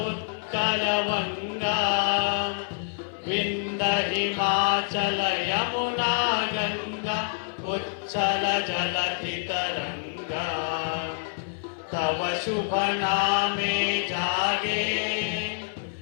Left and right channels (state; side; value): silent; right; 58 dB below the other